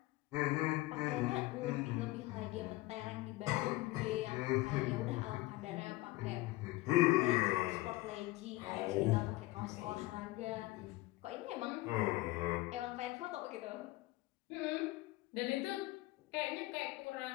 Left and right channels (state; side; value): quieter; right; 19.6 dB